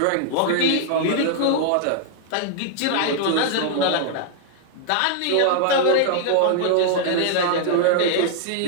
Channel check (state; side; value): different; both; correlation -0.01